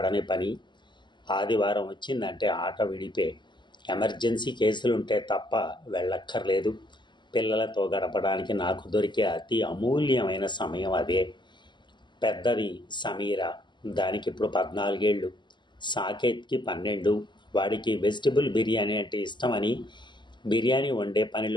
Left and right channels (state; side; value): late; right; 0.22 ms